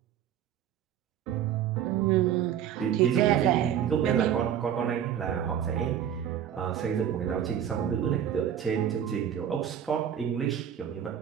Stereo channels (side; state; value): left; quieter; 9.6 dB